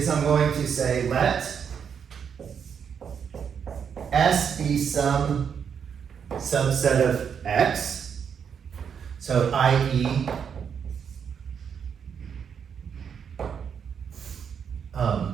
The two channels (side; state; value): left; quieter; 7.3 dB